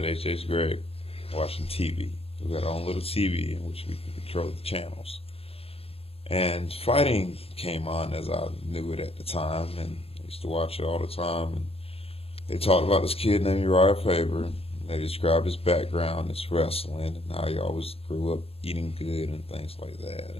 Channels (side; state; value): right; late; 0.28 ms